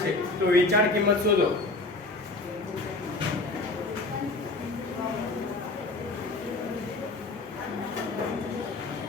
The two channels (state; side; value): quieter; right; 3.2 dB